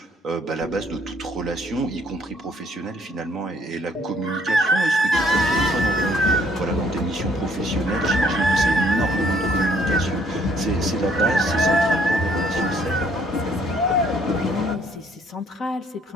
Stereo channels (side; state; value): both; normal; correlation 0.64